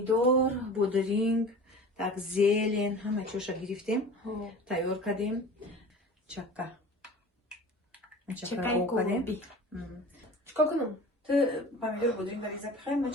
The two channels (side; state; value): both; normal; correlation 0.39